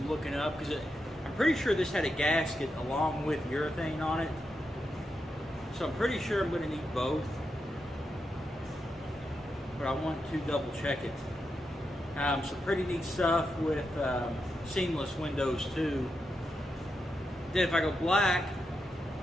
looking up because I'm pretty sure this had a gasket along with urethane on it. So I'm pretty sure I'm going to need both. But I want to double check it. Some pretty neat stuff with seamless windows too. Then if I go black,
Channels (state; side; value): normal; both; correlation 0.86